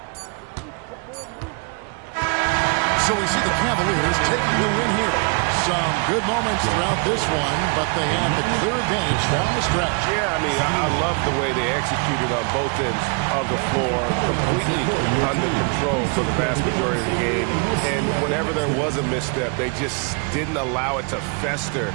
So we see the Cavaliers taking the win here. Some good moments throughout this one, but they have the clear advantage down the stretch. Yeah, I mean, I love the way they executed on both ends of the floor, completely under control for the vast majority of the game. And whenever there was a misstep, they just didn't allow it to fester,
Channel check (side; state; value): left; quieter; 34.6 dB